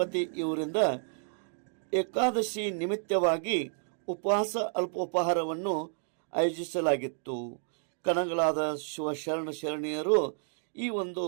ಇವರಿಂದ ಏಕಾದಶಿ ನಿಮಿತ್ತವಾಗಿ ಉಪವಾಸ ಅಲ್ಪೋಪಹಾರವನ್ನು ಆಯೋಜಿಸಲಾಗಿತ್ತು. ಕಣಗಳಾದ ಶಿವಶರಣ ಶರಣೀಯರು ಈ ಒಂದು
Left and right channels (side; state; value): left; silent; 57 dB below the other